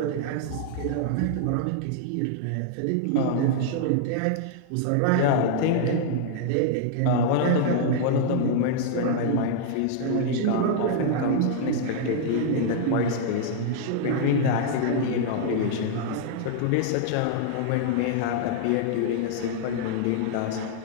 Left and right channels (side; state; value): both; different; correlation -0.01